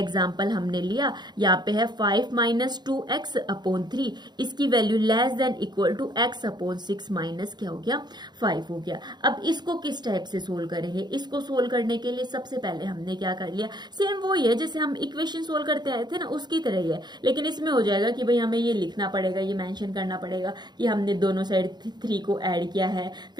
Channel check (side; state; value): left; late; 0.21 ms